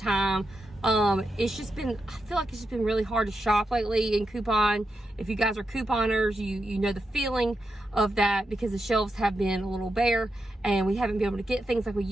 It's just been, I feel like it's just been really hard to shop lately and coupon. If you guys are couponers, you know the feeling of that because the shelves have been a little bare and we haven't been able to get things like we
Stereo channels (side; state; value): both; normal; correlation 0.87